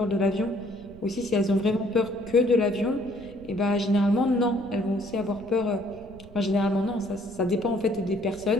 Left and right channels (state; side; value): noise; right; rumble, 20 dB below the sound